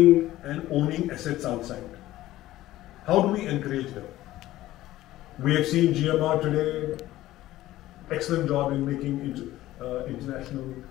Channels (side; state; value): right; quieter; 15.4 dB